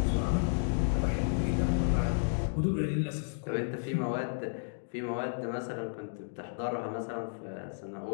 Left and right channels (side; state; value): right; silent; digital silence